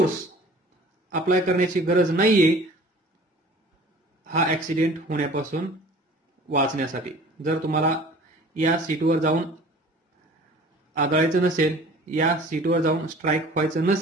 अप्लाय करण्याची गरज नाहीये हा ऍक्सिडेंट होण्यापासून वाचण्यासाठी. जर तुम्हाला या सीटवर जाऊन आदळायचं नसेल, या सीटवर जाऊन स्ट्राईक व्हायचं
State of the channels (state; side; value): normal; both; correlation 0.46